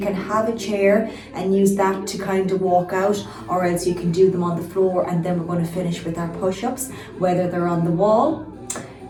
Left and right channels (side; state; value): both; identical; correlation 1.00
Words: can have a chair and use that to kind of walk out, or else you can do them on the floor, and then we're going to finish with our push-ups, whether they're on the wall,